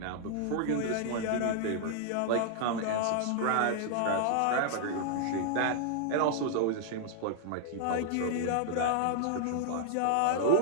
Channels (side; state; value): both; different; correlation 0.00